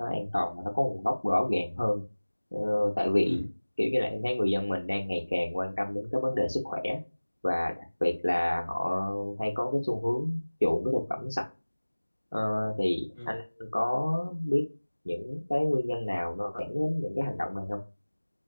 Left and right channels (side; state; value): both; inverted; correlation -1.00